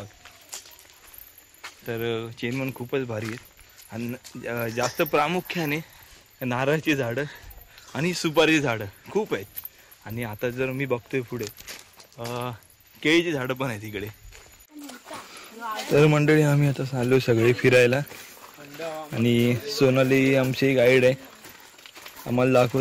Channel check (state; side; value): identical; both; correlation 1.00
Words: तर चेनवन खूपच भारी आहेत आणि जास्त प्रामुख्याने नारळाची झाडं आणि सुपारीची झाडं खूप आहेत. आणि आता जर मी बघतोय पुढे केळीची झाडं पण आहेत इकडे. तर मंडळी आम्ही आता चाललो सगळे फिरायला आणि सोनाली आमची गाईड आहे, आम्हाला